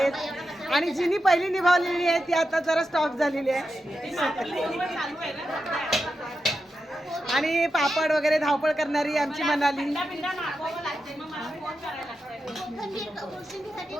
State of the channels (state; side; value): normal; both; correlation 0.89